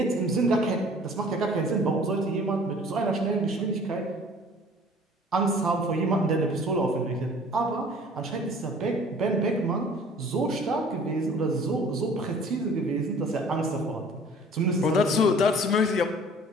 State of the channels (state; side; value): normal; both; correlation 0.50